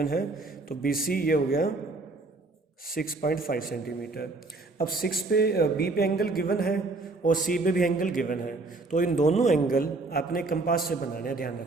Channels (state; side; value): quieter; left; 3.4 dB